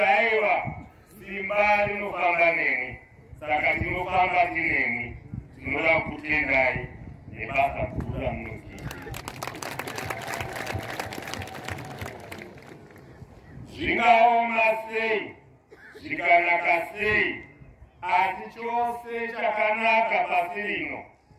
aiwa simba rinofamba nemi, saka tinofamba tinemi. Tinoda kutendai nebasa guru ramunoita. Zvingaoma sei, zvikanaka sei, asi chose chakanaka pasi rino,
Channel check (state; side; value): identical; both; correlation 1.00